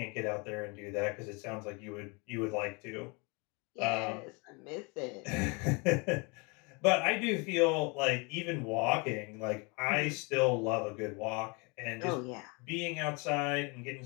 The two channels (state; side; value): quieter; right; 30.2 dB